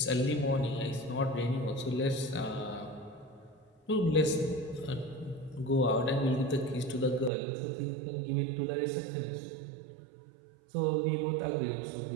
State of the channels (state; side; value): drops out; left; at 7.3 s